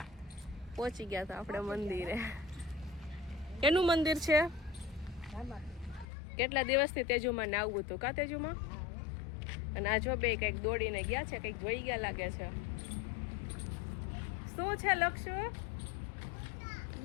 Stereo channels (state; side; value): drops out; right; at 6.1 s